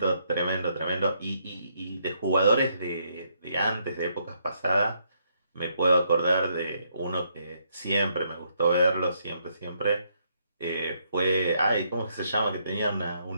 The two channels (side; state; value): both; inverted; correlation -0.74